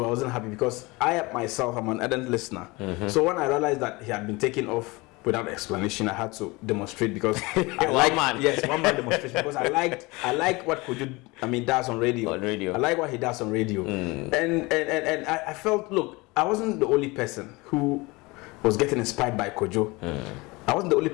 I wasn't happy, because I myself am an ardent listener. So when I realized that he had been taken off without explanation, I had to demonstrate, because I like one man demonstration, because I like what Kojo does on radio. I like what he does on radio, and I felt, look, I wasn't the only person who was getting inspired by Kojo. I wasn't the only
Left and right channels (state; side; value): quieter; right; 24.0 dB